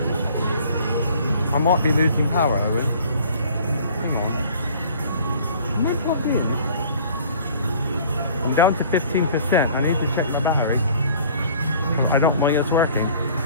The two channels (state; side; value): inverted; both; correlation -0.51